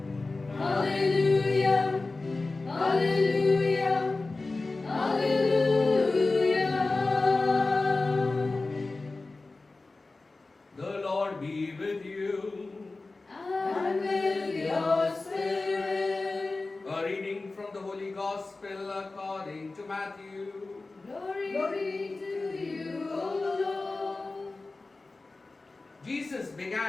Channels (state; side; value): quieter; right; 3.4 dB